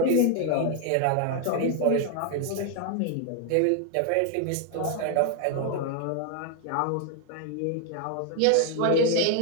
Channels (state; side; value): different; both; correlation 0.00